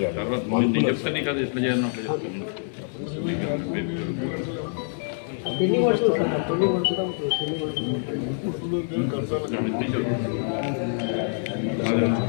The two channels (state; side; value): silent; right; 61 dB below the other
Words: తర్వాత నేను చెప్తాను నీకు అది ఎట్లా చేయాలని అట్లా